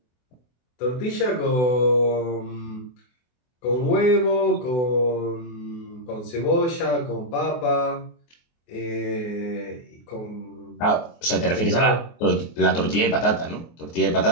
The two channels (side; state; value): right; late; 24 ms